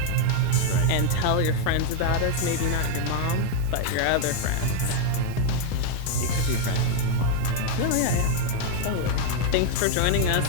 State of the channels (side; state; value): both; different; correlation 0.00